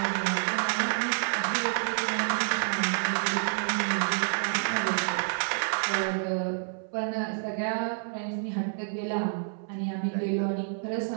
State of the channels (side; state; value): left; silent; 57 dB below the other